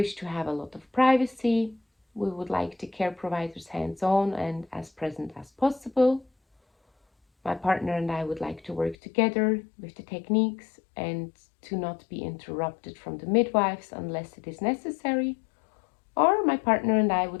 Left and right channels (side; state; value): right; drops out; at 9.0 s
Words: to have a lot of privacy. We would like the care providers hands-on and as present as possible. My partner and I would like to work together with the techniques and to not be interrupted from the midwives unless it is necessary. Or my partner and I